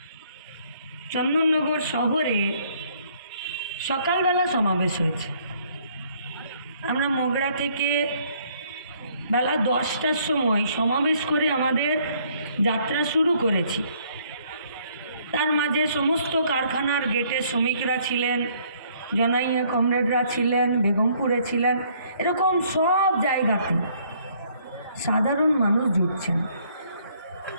চন্দননগর শহরে সকালবেলা সমাবেশ হয়েছে। আমরা মগরা থেকে বেলা 10টার সময় সমাবেশ করে আমাদের যাত্রা শুরু করেছি। তার মাঝে সমস্ত কারখানার গেটে শ্রমিকরা ছিলেন, জনাইয়া কমরেডরা ছিলেন, বেগমপুরে ছিলেন, এরকম সব জায়গাতে সাধারণ মানুষ জুটছেন।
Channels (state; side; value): inverted; both; correlation -0.64